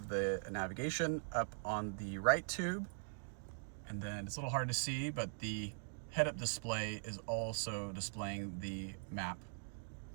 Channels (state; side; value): silent; left; digital silence